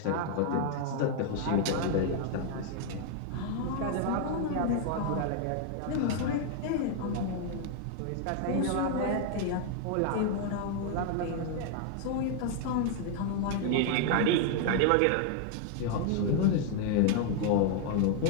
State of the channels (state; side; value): different; both; correlation 0.00